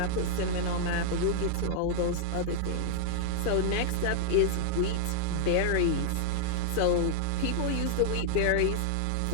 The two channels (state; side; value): different; both; correlation 0.00